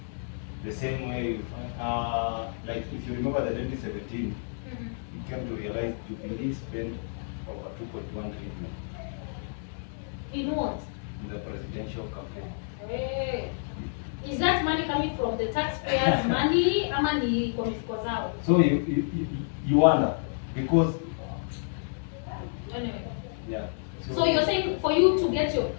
The same way, like if you remember the 2017, you came to realize Jubilee spent over 2.1 trillion. In what? In the presidential campaign. Hey. Is that money coming from the taxpayers' money or money from mifuko zao? So you wonder, because anyway. Yeah. So you're saying for you to get your,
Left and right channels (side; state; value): right; silent; 58 dB below the other